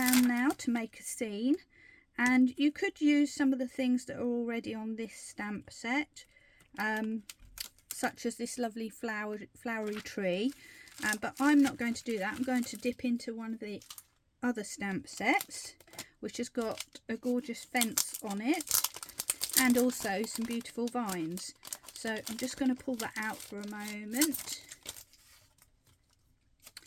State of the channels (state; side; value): identical; both; correlation 1.00